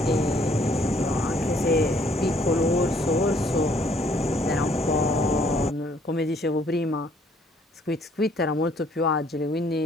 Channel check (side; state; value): both; normal; correlation 0.64